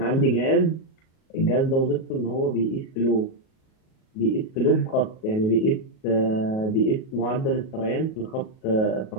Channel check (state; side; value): late; right; 37 ms